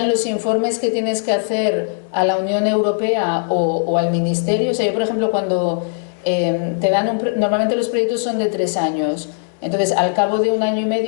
los informes que tienes que hacer a la Unión Europea o al Ministerio. O sea, yo, por ejemplo, cuando te dan normalmente los proyectos son de 3 años, entonces al cabo de 1 año y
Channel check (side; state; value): right; silent; 67 dB below the other